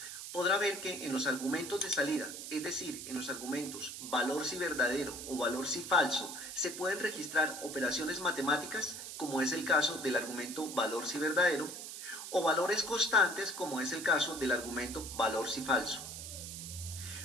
podrá ver que en los argumentos de salida, es decir, en los argumentos valor si verdadero o valor si falso, se pueden registrar operaciones matemáticas, como es el caso del argumento valor si verdadero, o valores constantes, como es el caso del argumento valor si falso.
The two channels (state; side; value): noise; right; hiss, 9 dB below the sound